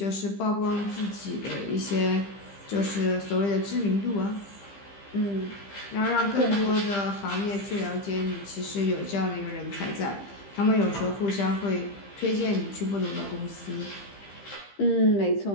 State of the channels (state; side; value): late; right; 15 ms